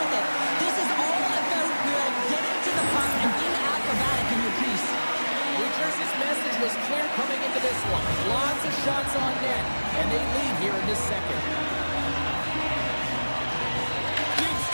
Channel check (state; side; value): inverted; both; correlation -1.00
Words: it. This is all about getting to the puck and being acrobatic in your piece. New Jersey's message was clear coming into this one. Lots of shots on net, and they lead here in this second.